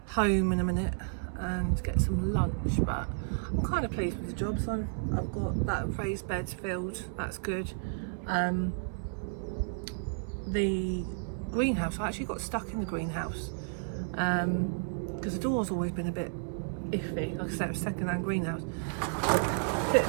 home in a minute and get some lunch, but I'm kind of pleased with the job. So I've got that raised bed filled, that's good. The greenhouse, I actually got stuck in the greenhouse because the door's always been a bit iffy. Like I said, it was second-hand greenhouse. Bit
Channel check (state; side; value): silent; left; 56 dB below the other